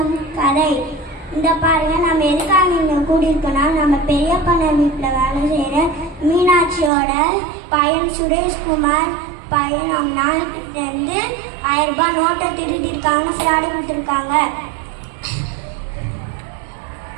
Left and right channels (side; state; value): left; drops out; at 6.9 s